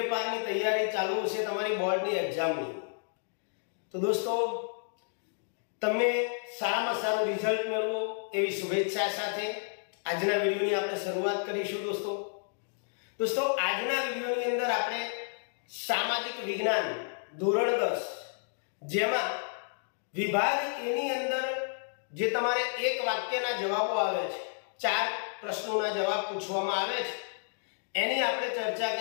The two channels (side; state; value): right; silent; digital silence